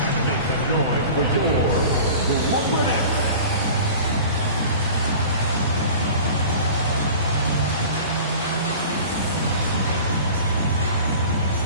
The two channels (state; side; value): inverted; both; correlation -0.40